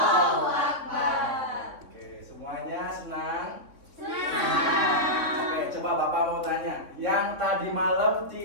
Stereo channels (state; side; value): late; left; 3.6 ms